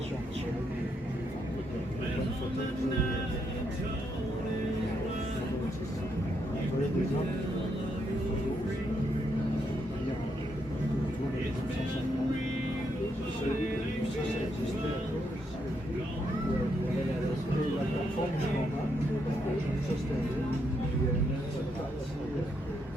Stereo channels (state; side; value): normal; both; correlation 0.78